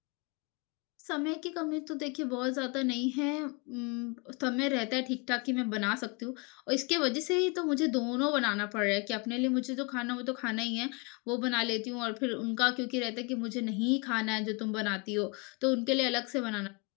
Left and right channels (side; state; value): right; quieter; 30.4 dB